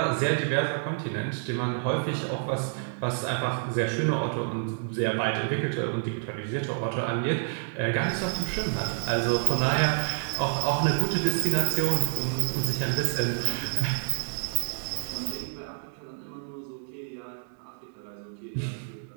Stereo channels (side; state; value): left; silent; digital silence